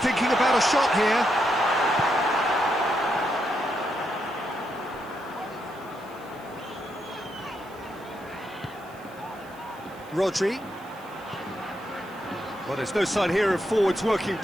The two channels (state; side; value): noise; right; hiss, 25 dB below the sound